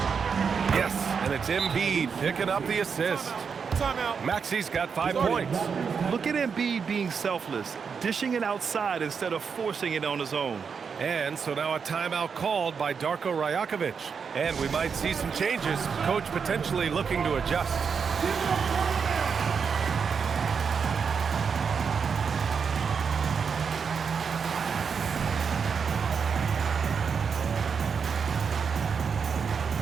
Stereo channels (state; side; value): quieter; left; 6.1 dB